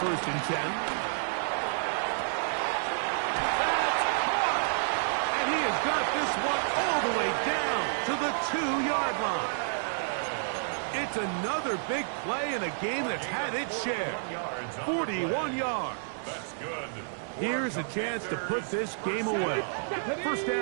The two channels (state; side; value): silent; left; digital silence